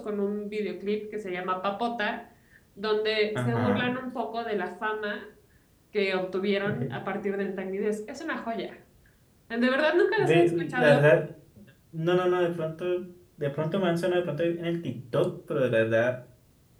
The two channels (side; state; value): both; identical; correlation 1.00